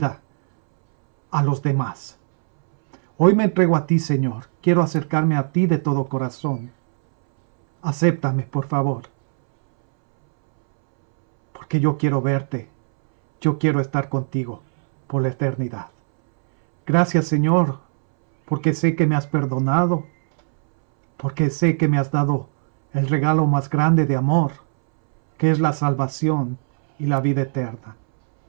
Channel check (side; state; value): left; silent; 66 dB below the other